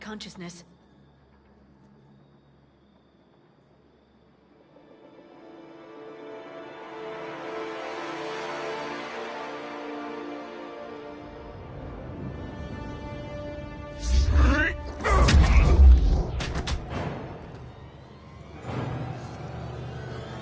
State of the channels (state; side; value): identical; both; correlation 1.00